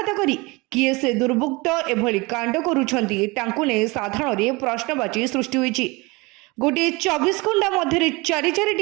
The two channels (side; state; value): left; quieter; 24.8 dB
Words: करी किए से दुर्बृत्त एभली कांड करुछंती तांकु ने साधारण प्रश्नवाची सृष्टि होईछि। गोटे 24 घंटा मध्य